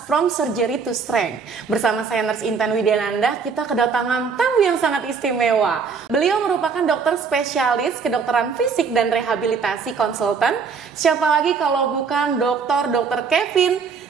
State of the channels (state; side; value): quieter; left; 5.5 dB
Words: From Surgery to Strength. Bersama saya Nurse Intan Widyananda, kita kedatangan tamu yang sangat istimewa. Beliau merupakan dokter spesialis kedokteran fisik dan rehabilitasi konsultan. Siapa lagi kalau bukan Dr. Kevin